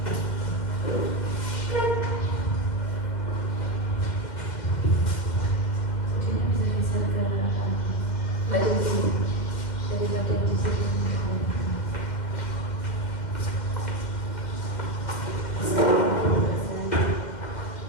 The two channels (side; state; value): right; late; 2.1 ms